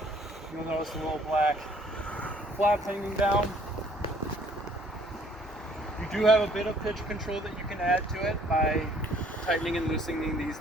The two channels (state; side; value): normal; both; correlation 0.60